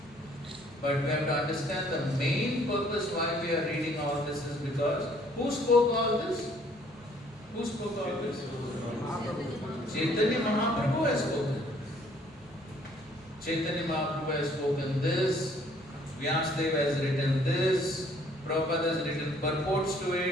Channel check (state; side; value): normal; both; correlation 0.61